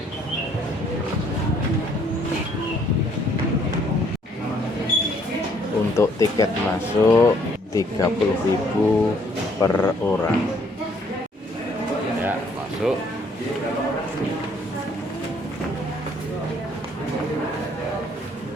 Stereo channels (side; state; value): both; normal; correlation 0.64